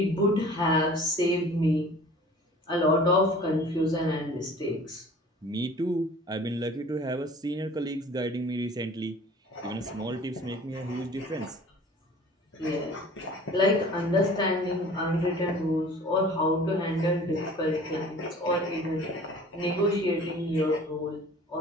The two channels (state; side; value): normal; both; correlation 0.46